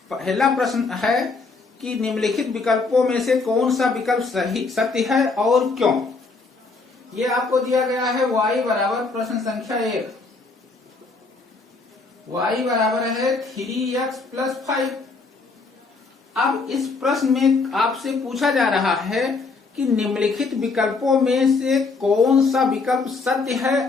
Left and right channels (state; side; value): quieter; right; 4.1 dB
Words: पहला प्रश्न है कि निम्नलिखित विकल्पों में से कौन सा विकल्प सही सत्य है और क्यों। ये आपको दिया गया है y बराबर प्रश्न संख्या 1, y बराबर है 3x + 5। अब इस प्रश्न में आपसे पूछा जा रहा है कि निम्नलिखित विकल्पों में से कौन सा विकल्प सत्य है